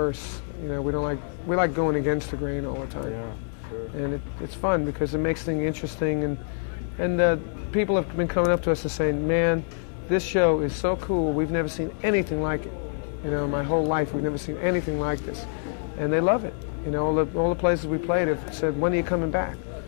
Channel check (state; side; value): silent; right; 61 dB below the other